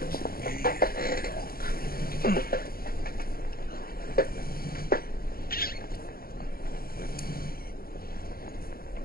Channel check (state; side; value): late; right; 0.43 ms